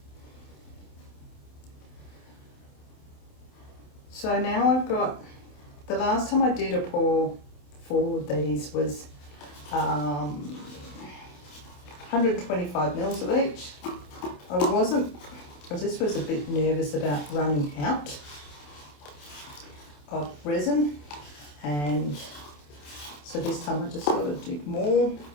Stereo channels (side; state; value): right; late; 27 ms